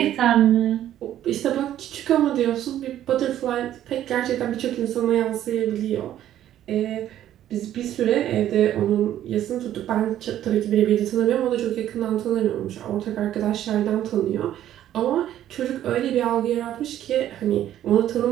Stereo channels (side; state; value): left; quieter; 11.9 dB